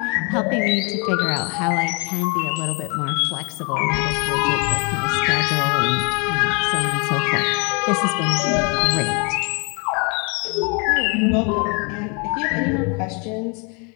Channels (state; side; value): quieter; right; 33.1 dB